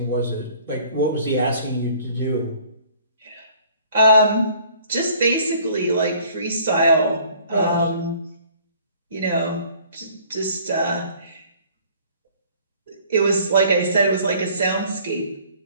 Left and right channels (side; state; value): both; inverted; correlation -0.55